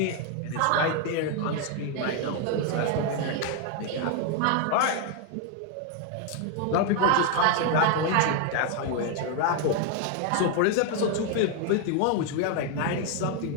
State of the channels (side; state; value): both; different; correlation 0.01